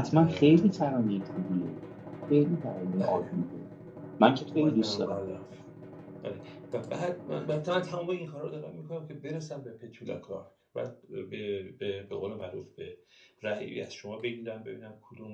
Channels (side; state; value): both; identical; correlation 1.00